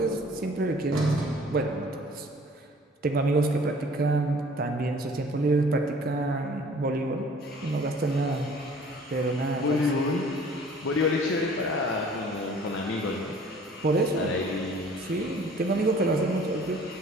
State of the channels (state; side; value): normal; both; correlation 0.52